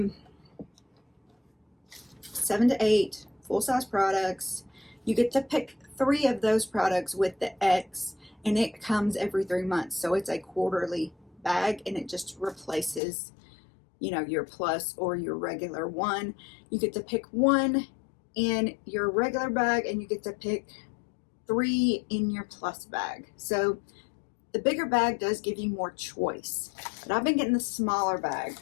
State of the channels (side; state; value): right; drops out; at 13.0 s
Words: to 8 full-size products. You get to pick 3 of those products with the X, and it comes every 3 months. So it's a quarterly bag, and it just replaces, you know, your plus or your regular one. You get to pick 1 in your regular bag, and you get to pick 3 in your plus bag. So the bigger bag does give you more choice, but I've been getting the smaller bag,